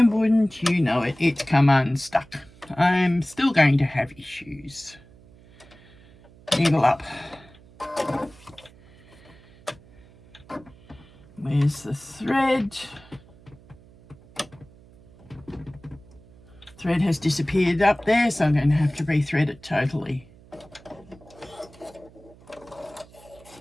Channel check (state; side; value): noise; right; hum, 24 dB below the sound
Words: wouldn't you know it, it's come unstuck. I'm still going to have issues. Needle up. Where's the thread? Thread has disappeared up there, so I'm going to have to rethread it totally.